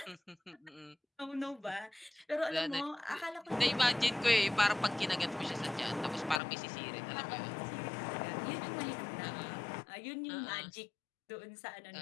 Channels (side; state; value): right; drops out; at 6.4 s